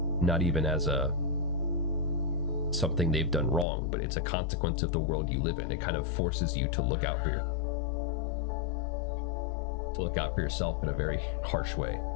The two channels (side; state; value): right; drops out; at 3.7 s